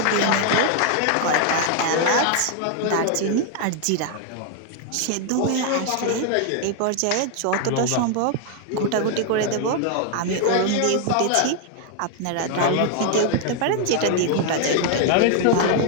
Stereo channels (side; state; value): both; different; correlation 0.00